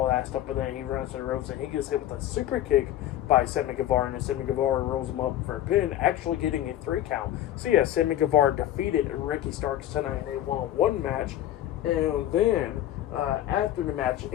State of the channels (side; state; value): right; quieter; 12.6 dB